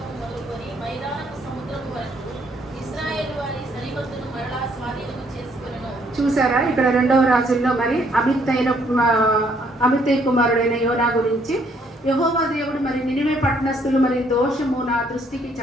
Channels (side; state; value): both; normal; correlation 0.68